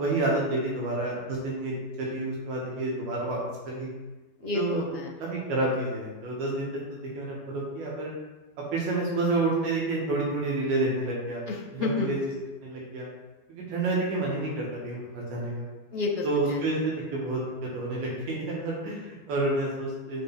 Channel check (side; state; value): left; late; 12 ms